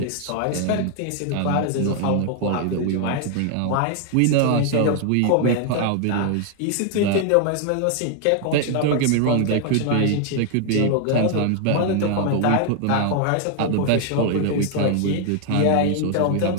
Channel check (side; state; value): both; different; correlation 0.00